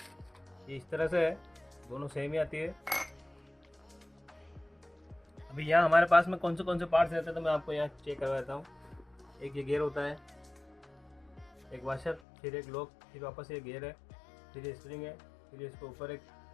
ये इस तरह से है, दोनों सेम ही आती है। अभी यहाँ हमारे पास में कौन से पार्ट्स रहते हैं तो मैं आपको यहाँ चेक करवा देता हूँ। एक ये गियर होता है, एक वाशर, फिर एक लॉक, फिर वापस ये गियर है, फिर ये स्प्रिंग है, फिर इसके ऊपर एक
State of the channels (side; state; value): right; drops out; at 12.2 s